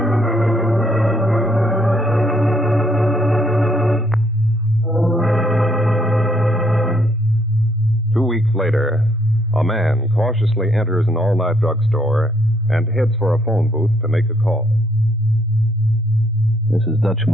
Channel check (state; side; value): normal; both; correlation 0.70